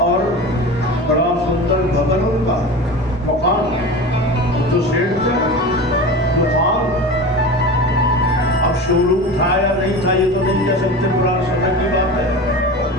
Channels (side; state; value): both; normal; correlation 0.31